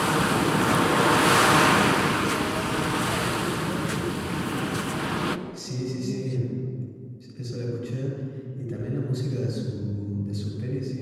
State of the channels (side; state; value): both; identical; correlation 1.00